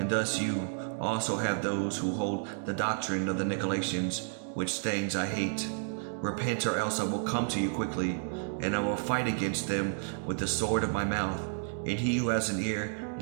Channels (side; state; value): left; silent; digital silence